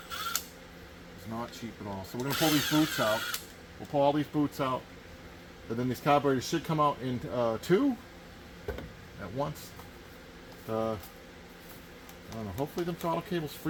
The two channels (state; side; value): identical; both; correlation 1.00